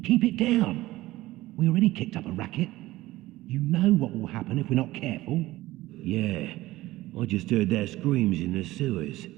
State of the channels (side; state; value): left; quieter; 17.4 dB